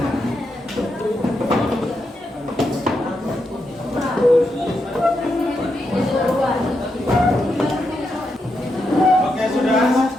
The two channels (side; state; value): both; normal; correlation 0.84